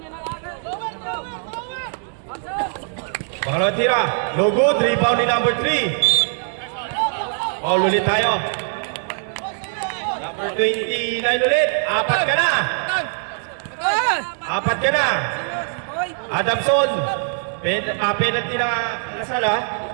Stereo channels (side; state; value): left; silent; 65 dB below the other